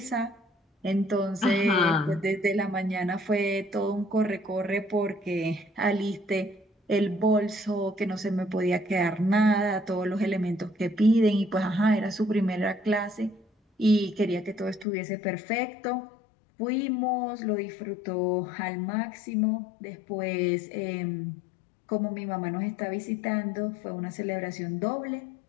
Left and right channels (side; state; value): right; drops out; at 14.9 s